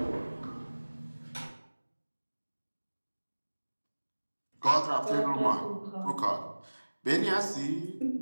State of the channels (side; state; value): both; inverted; correlation -1.00